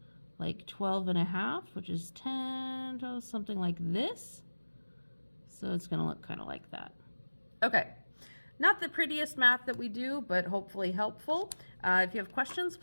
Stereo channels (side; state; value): both; inverted; correlation -1.00